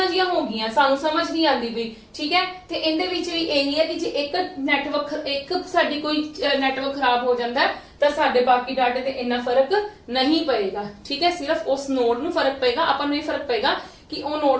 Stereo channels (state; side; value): identical; both; correlation 1.00